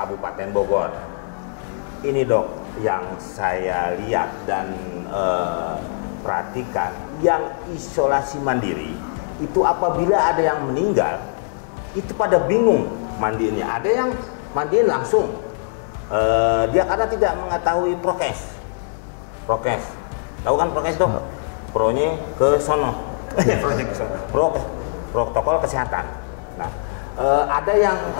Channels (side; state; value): right; silent; digital silence